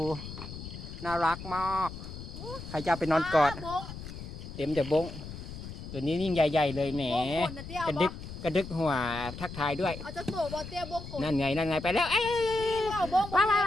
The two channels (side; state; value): left; noise; rumble, 11 dB below the sound